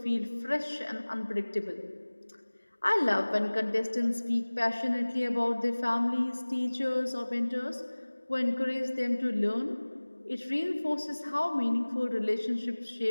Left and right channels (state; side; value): inverted; both; correlation -1.00